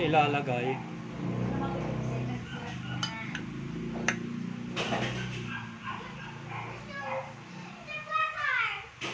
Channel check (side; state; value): both; identical; correlation 1.00